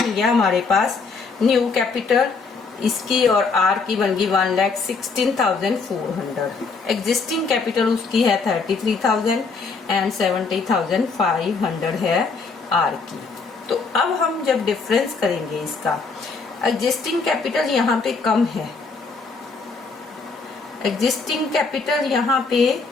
गया हमारे पास न्यू कैपिटल, इसकी और आर की बन गई 1,16,400। एग्जिस्टिंग कैपिटल उसकी है 33,000 एंड 70,500 है आर की। तो अब हम जब डिफरेंस करेंगे इसका, एग्जिस्टिंग कैपिटल यहाँ पे कम है, एग्जिस्टिंग कैपिटल यहाँ पे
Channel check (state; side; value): quieter; right; 4.5 dB